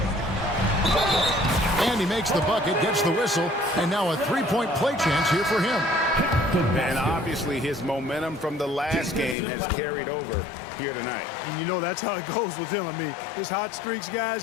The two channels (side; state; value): right; drops out; at 9.3 s